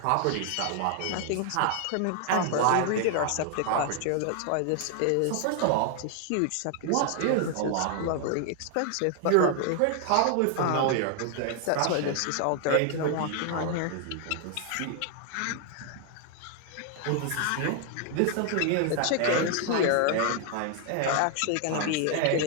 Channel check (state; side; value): different; both; correlation 0.00